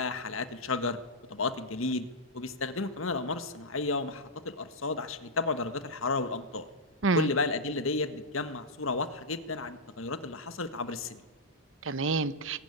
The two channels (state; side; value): normal; both; correlation -0.07